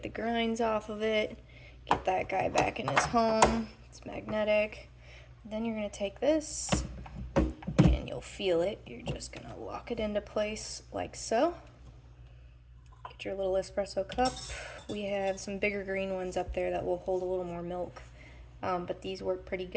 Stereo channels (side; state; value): both; identical; correlation 1.00